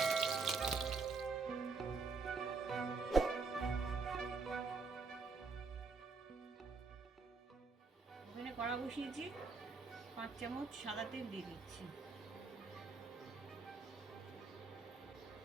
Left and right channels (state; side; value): quieter; left; 4.4 dB